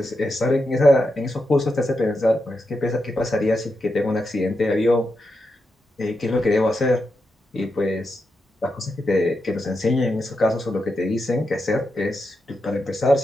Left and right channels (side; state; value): both; normal; correlation 0.86